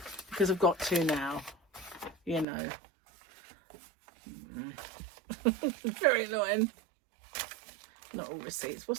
because I've got to now, you know. Very annoying. Not all receipts.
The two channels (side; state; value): left; drops out; at 2.5 s